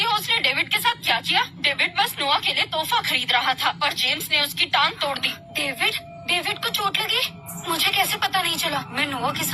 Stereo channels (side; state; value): both; identical; correlation 1.00